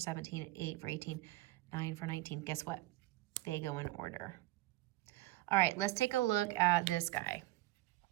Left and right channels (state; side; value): quieter; left; 18.5 dB